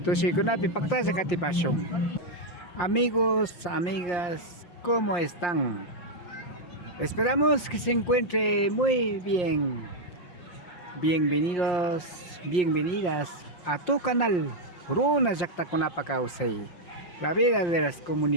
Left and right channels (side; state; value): right; late; 5.7 ms